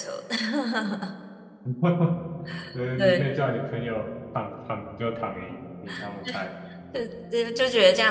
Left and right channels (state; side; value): identical; both; correlation 1.00